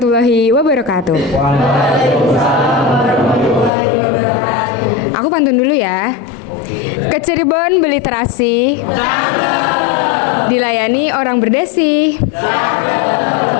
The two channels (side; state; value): right; drops out; at 3.7 s